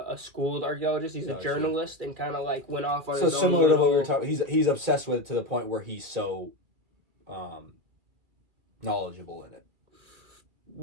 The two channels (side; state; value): left; late; 2.3 ms